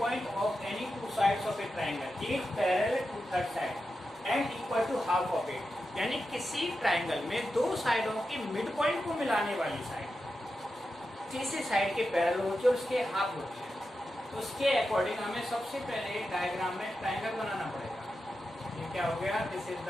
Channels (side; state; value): both; normal; correlation 0.90